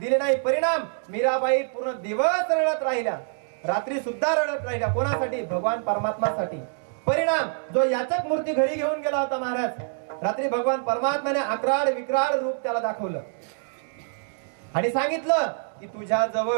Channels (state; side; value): silent; left; digital silence